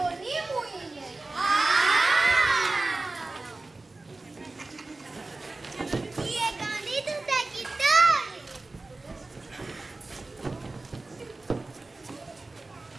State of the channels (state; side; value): quieter; left; 3.2 dB